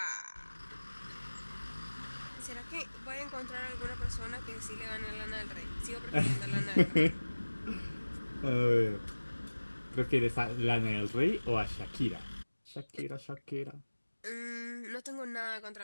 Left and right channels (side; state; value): both; inverted; correlation -1.00